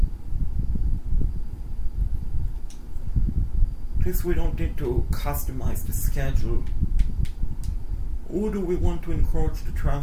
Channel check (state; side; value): identical; both; correlation 1.00